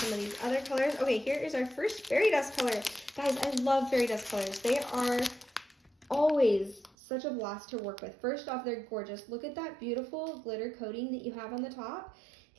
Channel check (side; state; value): left; drops out; at 7.0 s